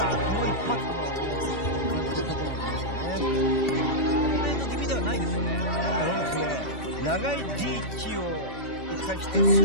この一発。今岩渕選手非常に感じているところなんじゃないでしょうかね。ストレート気味ではないですよね。そうですね。長いリーチを生かして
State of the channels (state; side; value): late; right; 2.5 ms